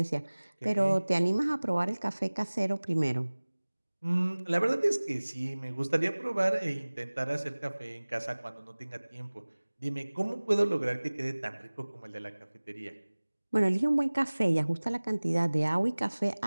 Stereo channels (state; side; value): inverted; both; correlation -1.00